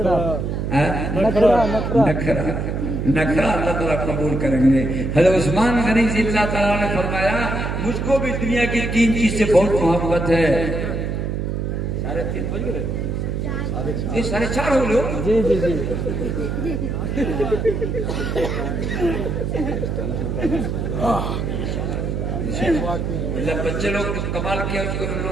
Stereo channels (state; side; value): noise; right; hum, 2 dB below the sound